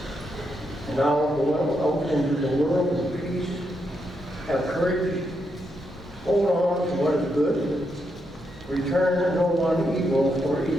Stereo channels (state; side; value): normal; both; correlation 0.81